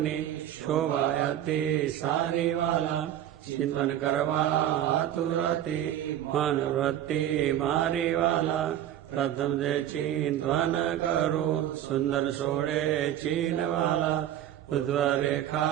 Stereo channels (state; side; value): quieter; left; 11.5 dB